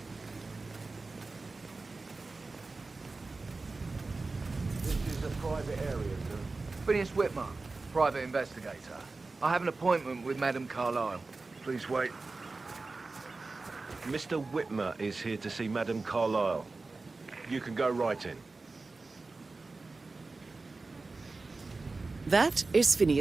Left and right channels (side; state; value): left; quieter; 3.6 dB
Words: Phineas Whitmer, private investigator. I have an appointment with Madame Carlyle. Please wait. Mr. Whitmer is here to see Madame Carlyle. You can go right in. That is